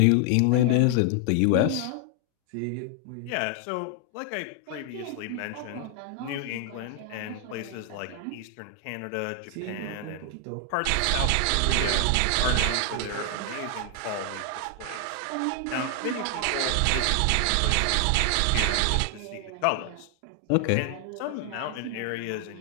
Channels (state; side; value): different; both; correlation 0.00